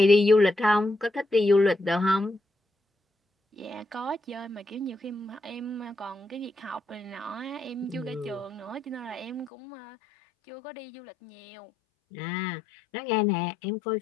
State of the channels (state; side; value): drops out; right; at 9.5 s